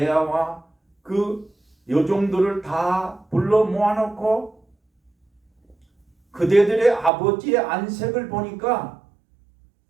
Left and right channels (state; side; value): drops out; left; at 7.1 s